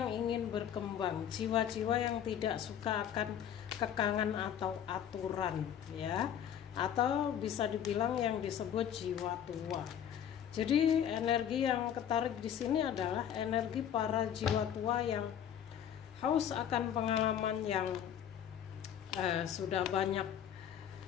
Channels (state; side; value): quieter; right; 9.5 dB